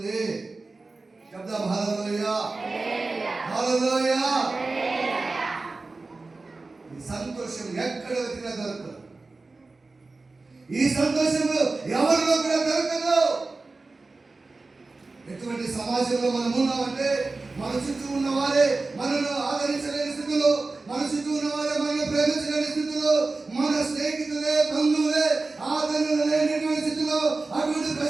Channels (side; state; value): left; quieter; 3.6 dB